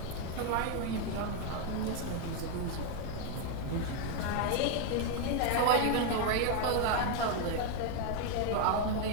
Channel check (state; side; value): different; both; correlation 0.01